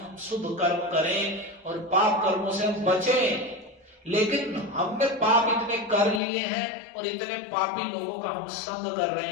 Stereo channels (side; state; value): right; drops out; at 6.2 s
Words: शुभ कर्म करें और पाप कर्मों से हम बचें, लेकिन हमने पाप इतने कर लिए हैं और इतने पापी लोगों का हम संग कर